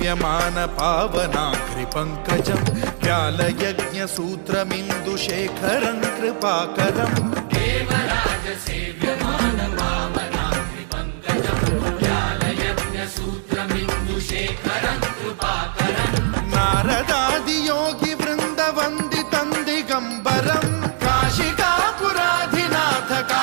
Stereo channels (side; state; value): left; silent; digital silence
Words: पावनाग्रिपङ्कजं व्यालयज्ञसूत्रमिन्दुशेखरं कृपाकरं देवराजसेव्यमान पावनाग्रिपङ्कजं व्यालयज्ञसूत्रमिन्दुशेखरं कृपाकरं नारदादियोगिवृन्दवन्दितं दिगम्बरं काशिकापुराधिनाथ